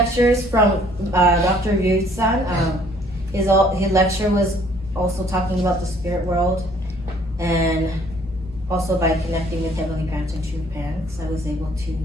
from Dr. Ryut-san. His lecture was also talking about the spirit world, and also by connecting with Heavenly Parents and True Parents, I was able to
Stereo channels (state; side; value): normal; both; correlation 0.60